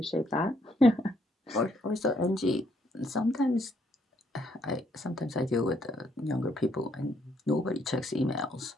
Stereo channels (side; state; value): both; normal; correlation 0.71